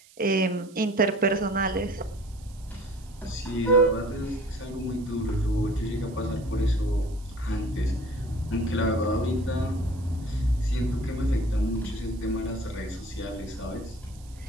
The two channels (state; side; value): noise; right; hiss, 25 dB below the sound